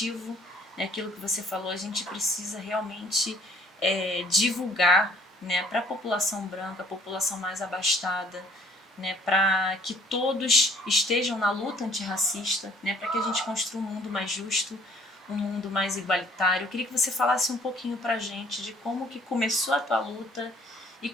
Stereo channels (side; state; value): both; normal; correlation 0.58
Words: né, aquilo que você falou, a gente precisa realmente divulgar, né, para a população branca, a população mais abastada, né, para que todos estejam na luta antirracista, né, para que a gente construa um mundo mais justo, um mundo mais igualitário. Eu queria que você falasse um pouquinho para a gente de como que começou a tua luta e